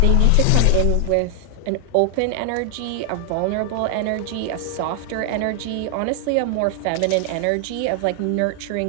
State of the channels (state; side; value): different; both; correlation 0.00